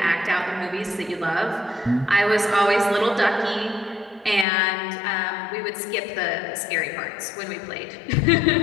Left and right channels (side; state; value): right; drops out; at 4.5 s